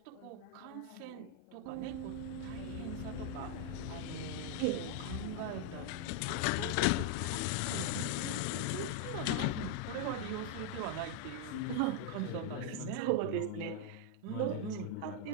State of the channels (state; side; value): different; both; correlation 0.00